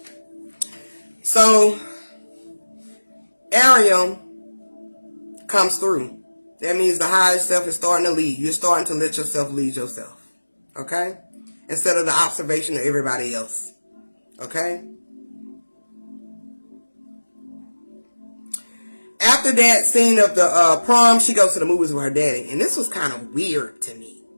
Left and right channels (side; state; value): both; inverted; correlation -1.00